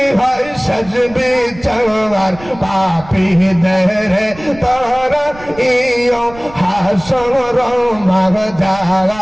হয় সজবে চার পাপি দেরে তারা ইও হাসর মাগজার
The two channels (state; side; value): noise; right; rumble, 19 dB below the sound